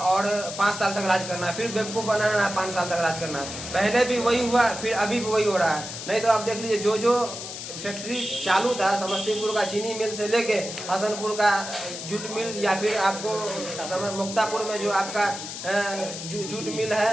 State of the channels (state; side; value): noise; left; hiss, 8 dB below the sound